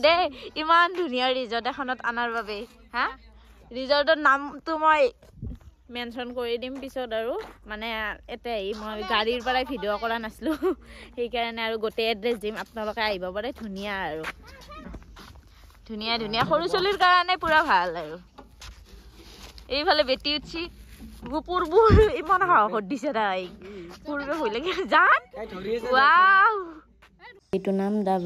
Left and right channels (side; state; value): both; identical; correlation 1.00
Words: দে ইমান ধুনিয়া ৰিজৰ্ট এখনত আনাৰ বাবে হা ৰিজৰ্টৰ নামটো মই মেনশন কৰি দিম পিছত আৰু মানে এতে মই গাড়ীৰ পৰা ভিডিও কৰা নাছলো সেই কাৰণে আৰু গোটে এড্ৰেছ দিম আপোনালোকে আহিব পাৰে ধুনিয়া আৰু ধুনিয়া ধুনিয়া সৰু চলিৰ কাৰণে পুৰা ভাল আৰু এইফালে বেটি উঠছি গুপুৰবুৰ ইমান হাঁহত দিছে তাই পুৰবে হৈ লাগে জান ওয়াও এইটো নাম দা